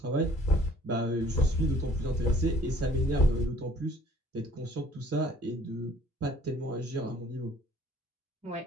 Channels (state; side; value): normal; both; correlation 0.56